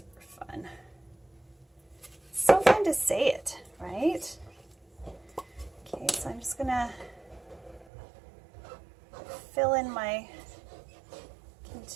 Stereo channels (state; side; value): drops out; left; at 7.9 s